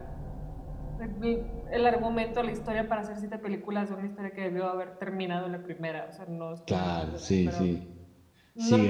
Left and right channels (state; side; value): identical; both; correlation 1.00